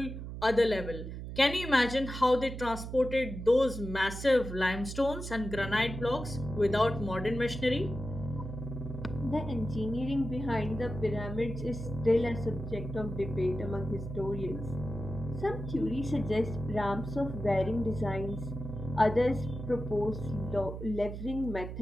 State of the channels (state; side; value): noise; right; hum, 8 dB below the sound